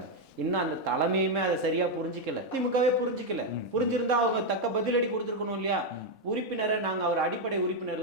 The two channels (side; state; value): both; normal; correlation 0.02